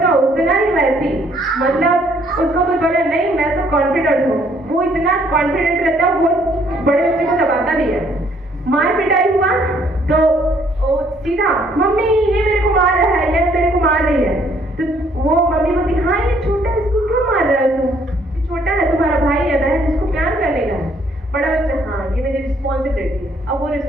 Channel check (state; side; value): normal; both; correlation 0.65